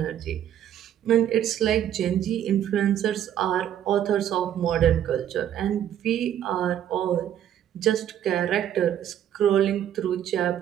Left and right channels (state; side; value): quieter; left; 10.5 dB